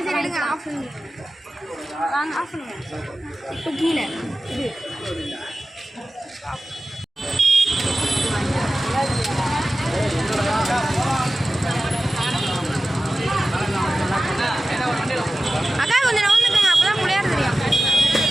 எடுங்க, ஆஃப் பண்ணுங்க. வாங்க, ஆஃப் பண்ணுங்க. இப்போ கீழே இது அக்கா கொஞ்சம் நவுந்துக்கங்க, அப்பதான் பிள்ளையார் தெரியும்.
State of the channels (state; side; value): normal; both; correlation 0.94